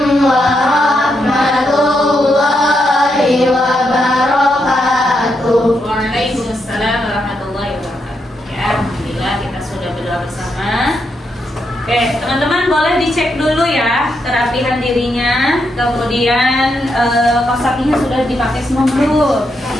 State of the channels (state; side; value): normal; both; correlation 0.81